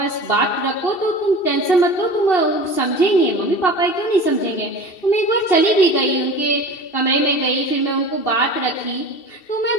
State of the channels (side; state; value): right; late; 2.7 ms